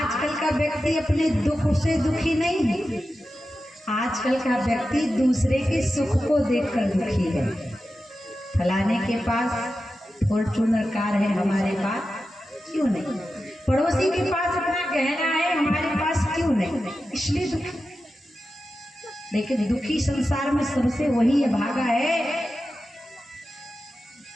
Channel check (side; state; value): both; normal; correlation 0.92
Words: का व्यक्ति अपने दुख से दुखी नहीं है, आजकल का व्यक्ति दूसरे के सुख को देखकर दुखी है। फलाने के पास फॉर्च्यूनर कार है, हमारे पास क्यों नहीं? पड़ोसी के पास अपना गहना है, हमारे पास क्यों नहीं? इसलिए दुखी। लेकिन दुखी संसार में सबसे वही है भागा है